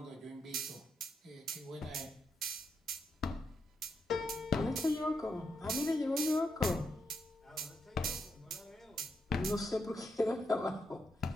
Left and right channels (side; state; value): both; normal; correlation 0.83